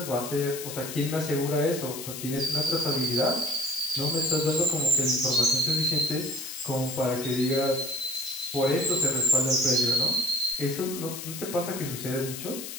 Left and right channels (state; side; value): noise; left; hiss, 9 dB below the sound